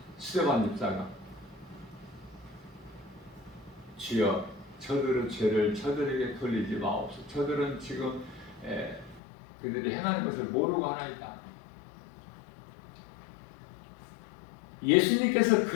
스데반 집사가 주여 저들의 죄를 저들에게 돌리지 마옵소서. 저들은 지금 그들이 행하는 것을 모르고 하나이다. 예수님께서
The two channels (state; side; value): drops out; right; at 9.2 s